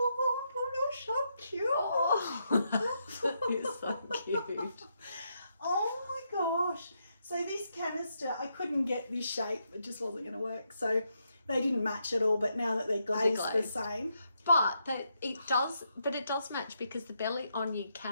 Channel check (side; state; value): both; inverted; correlation -0.80